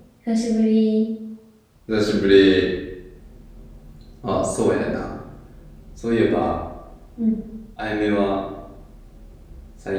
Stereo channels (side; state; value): both; identical; correlation 1.00